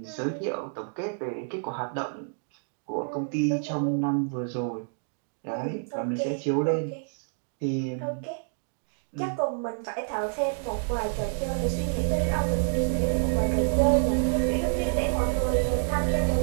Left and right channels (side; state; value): left; silent; digital silence